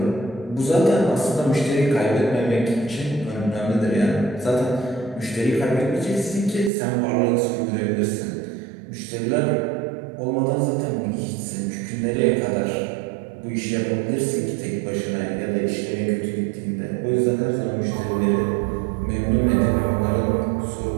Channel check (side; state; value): left; drops out; at 6.7 s